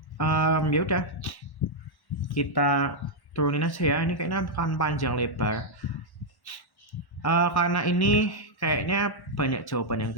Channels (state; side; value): late; right; 1.1 ms